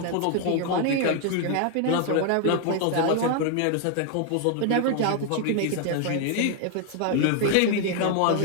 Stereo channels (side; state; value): both; different; correlation 0.01